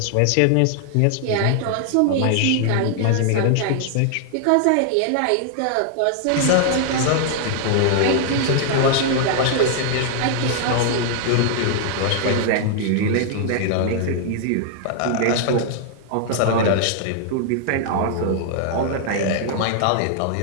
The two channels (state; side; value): different; both; correlation 0.00